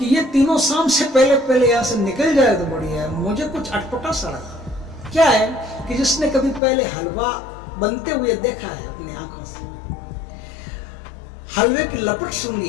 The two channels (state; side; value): drops out; right; at 6.6 s